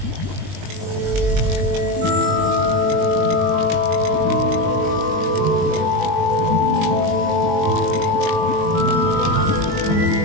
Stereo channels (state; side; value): late; left; 20 ms